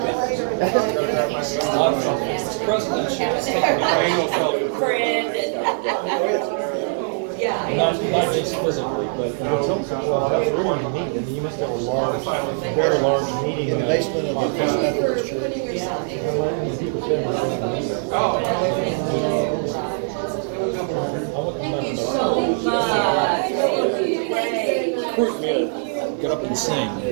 Not just physically, but Well, that's really unique. I mean, you must have a large, very large meeting. In the basement of the Thank you so much. get up and sing.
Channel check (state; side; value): silent; left; 57 dB below the other